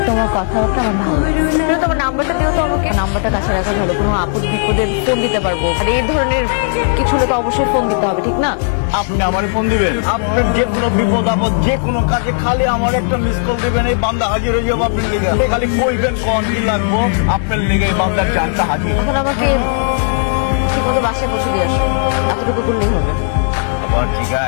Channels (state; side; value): silent; right; digital silence